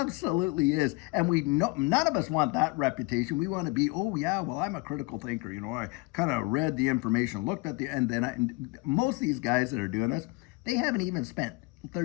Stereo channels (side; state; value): right; quieter; 25.1 dB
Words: is. And we know none of us want that reputation. We want to be, oh yeah, well, I'm a critical thinker. I kind of read the information, looked at and then most of these guys that are doing this, they haven't even spent